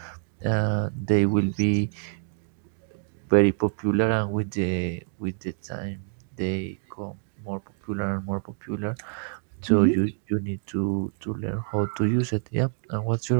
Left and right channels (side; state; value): left; silent; digital silence